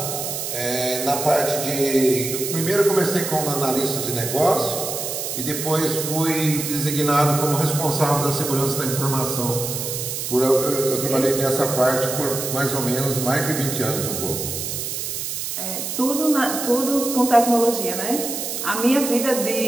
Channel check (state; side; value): noise; right; hiss, 4 dB below the sound